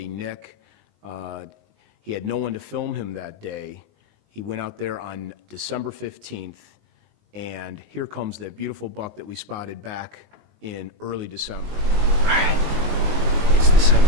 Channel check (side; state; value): left; late; 19 ms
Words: Nick. He had no one to film him that day. He went out there on December 15th. And here comes that beautiful buck that we spotted back in early December. All right, it's